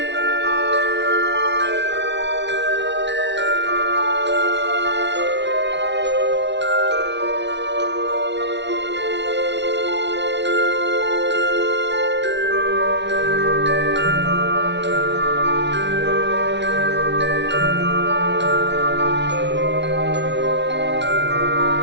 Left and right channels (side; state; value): left; late; 0.51 ms